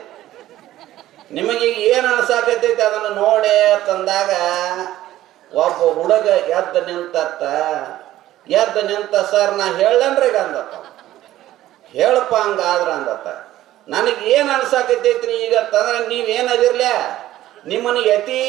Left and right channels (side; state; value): left; quieter; 14.3 dB